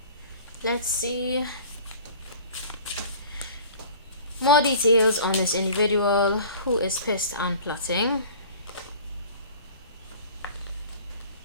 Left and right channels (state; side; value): inverted; both; correlation -0.44